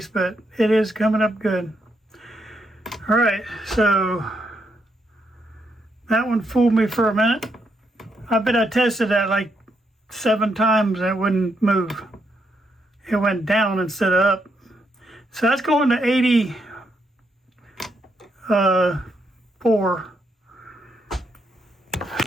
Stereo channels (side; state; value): both; normal; correlation 0.78